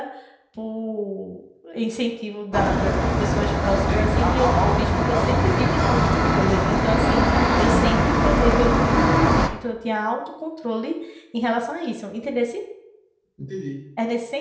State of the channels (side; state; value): both; identical; correlation 1.00